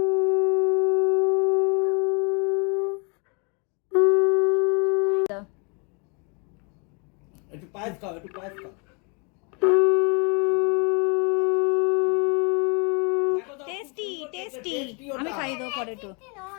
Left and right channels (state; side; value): quieter; right; 33.7 dB